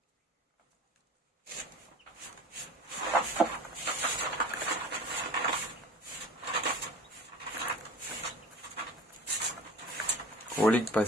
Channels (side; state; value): both; normal; correlation 0.40